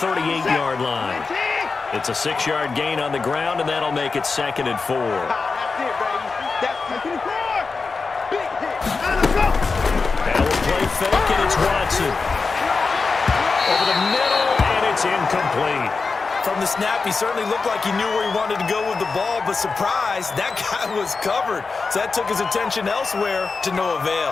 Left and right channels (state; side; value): quieter; right; 4.4 dB